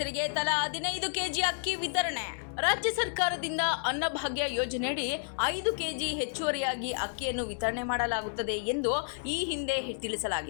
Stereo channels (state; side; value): silent; right; 57 dB below the other